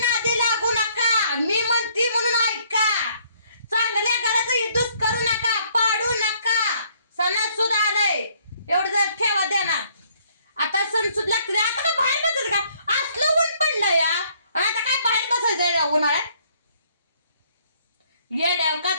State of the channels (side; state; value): both; inverted; correlation -0.64